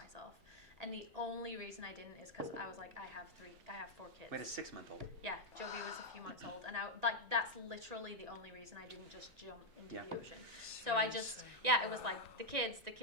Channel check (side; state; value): left; late; 1.9 ms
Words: And the only reason I didn't is because I was like, I have 4 kids. Wait, a 6-month-old. Yeah, Jovi was a few months old, and that's literally the only reason I didn't just jump into the ocean. So I just, it was like the kids,